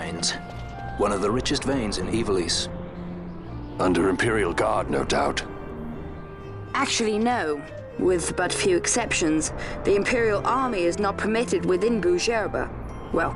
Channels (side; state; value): both; identical; correlation 1.00